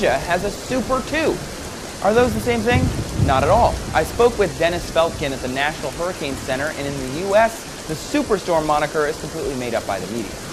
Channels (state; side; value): identical; both; correlation 1.00